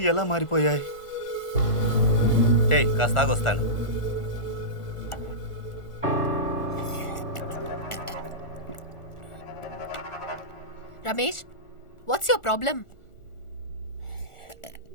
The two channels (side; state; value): right; late; 1.4 ms